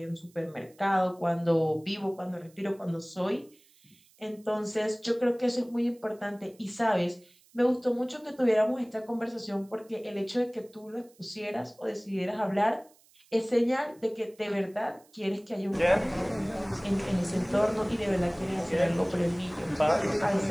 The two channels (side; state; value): right; noise; hiss, 30 dB below the sound